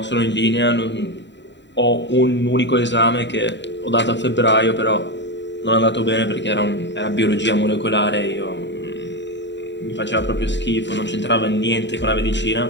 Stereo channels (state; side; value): late; right; 0.52 ms